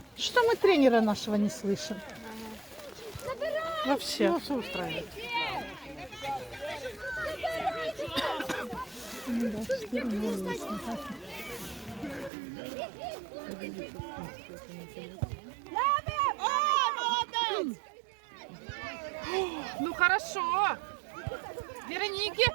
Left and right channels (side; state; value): left; drops out; at 12.3 s